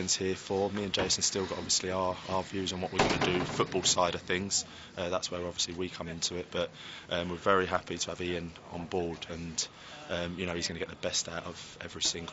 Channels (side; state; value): both; identical; correlation 1.00